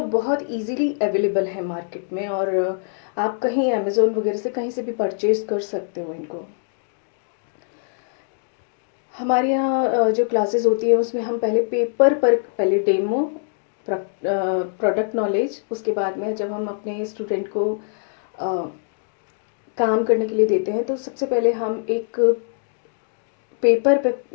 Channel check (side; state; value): right; silent; digital silence